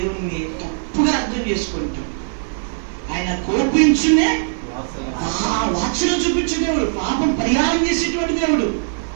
తప్పుగా అర్థం చేసుకుంటాం. ఆయన కోపించునే వాత్సల్యం చూపించే దేవుడు, పాపం పరిహారం చేసేటువంటి దేవుడు,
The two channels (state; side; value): silent; left; 58 dB below the other